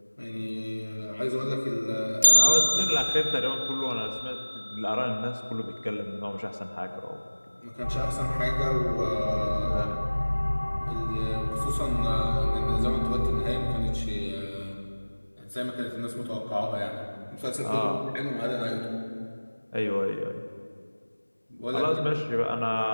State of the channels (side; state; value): both; inverted; correlation -1.00